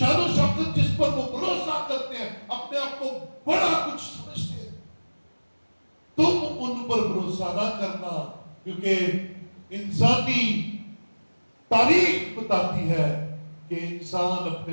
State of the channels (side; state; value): both; inverted; correlation -1.00